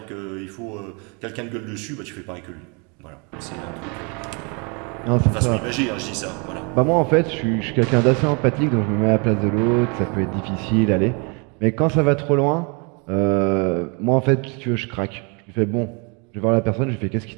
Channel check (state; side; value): quieter; left; 33.2 dB